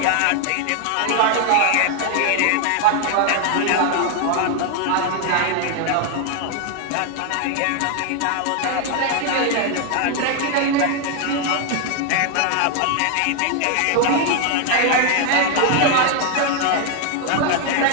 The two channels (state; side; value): different; both; correlation 0.00